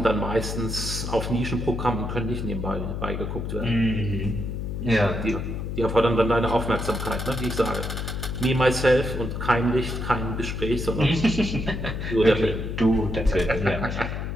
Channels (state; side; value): noise; left; hum, 4 dB below the sound